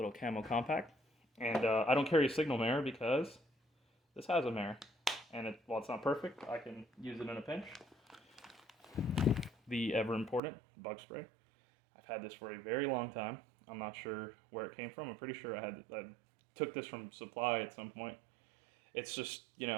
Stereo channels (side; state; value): left; drops out; at 10.4 s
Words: camo compact, and I don't carry a signal mirror because this has a mirror, and while it's not perfect, I can use it in a pinch. The ever important bug spray. I've had this for a very long time. I'm not sure where it came from. I'm pretty sure I took this from supply at some point. It's just, you